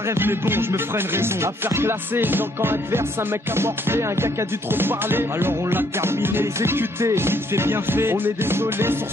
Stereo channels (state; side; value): normal; both; correlation 0.68